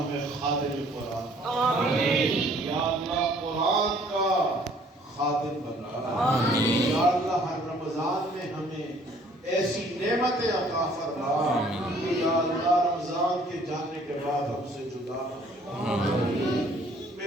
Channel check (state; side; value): normal; both; correlation 0.58